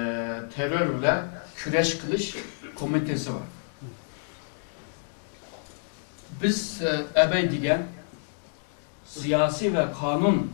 terörle küreş kılış komitesi var. Biz ebey diyen siyasi ve kanun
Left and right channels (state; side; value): silent; right; digital silence